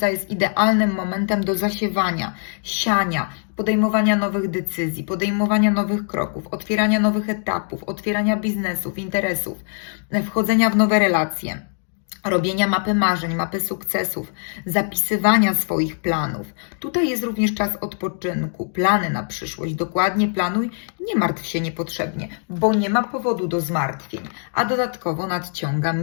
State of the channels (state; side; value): silent; right; 57 dB below the other